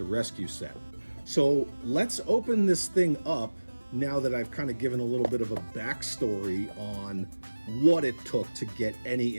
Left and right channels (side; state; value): both; inverted; correlation -1.00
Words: Rescue set. So let's open this thing up now that I've kind of given a little bit of a backstory on what it took to get any